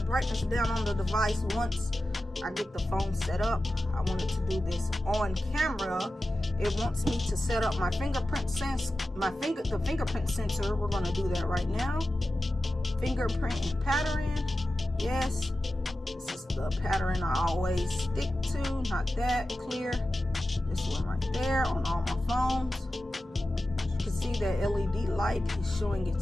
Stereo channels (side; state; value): both; normal; correlation 0.93